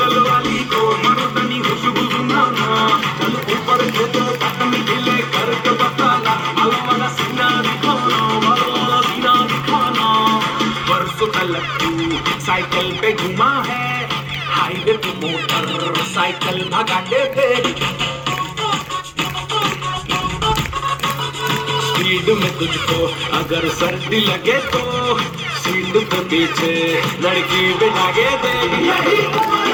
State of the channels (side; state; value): both; identical; correlation 1.00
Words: वाली को मर्दानी खुशबू सुनाना। चल ऊपर को तो तकनी ढीले करके बताना, वाला सीना दिखाना, वाला सीना दिखाना। परसों तलक तू साइकिल पे घुमा है, हाईवे पे मोटर साइकिल भगाते थे, स्पीड में तुझको अगर सर्दी लगे तो सीट पे पीछे लड़की बिठाके दे। यही उम्र